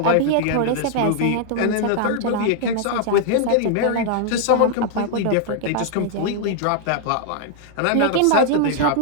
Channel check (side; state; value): both; different; correlation 0.00